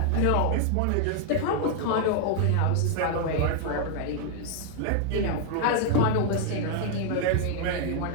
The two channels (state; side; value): different; both; correlation 0.00